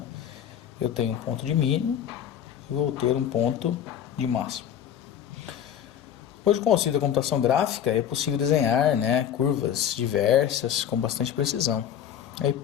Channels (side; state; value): right; quieter; 9.5 dB